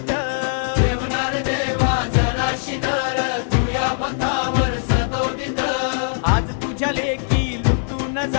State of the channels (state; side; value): silent; right; digital silence